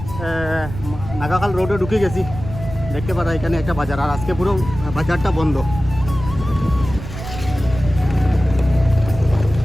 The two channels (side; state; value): right; noise; rumble, 10 dB below the sound